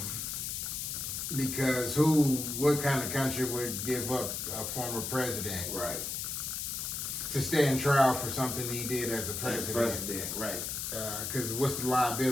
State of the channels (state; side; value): noise; left; hiss, 3 dB below the sound